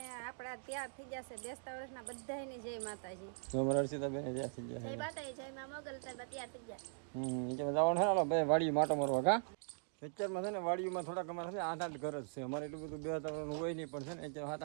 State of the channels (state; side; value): silent; left; digital silence